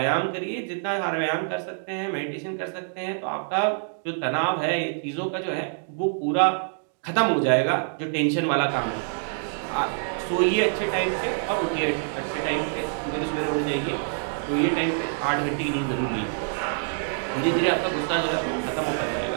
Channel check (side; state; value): left; silent; digital silence